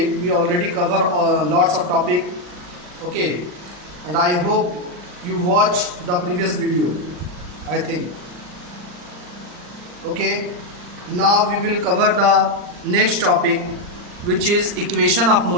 we already cover lots of topic, okay, and I hope you watch the previous video, I think. Okay, now we will cover the next topic, which is equation of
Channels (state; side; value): late; left; 39 ms